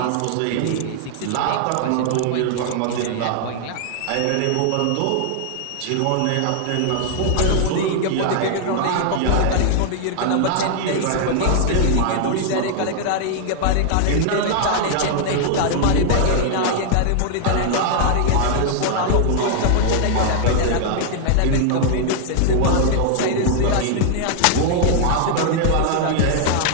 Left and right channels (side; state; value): both; different; correlation -0.01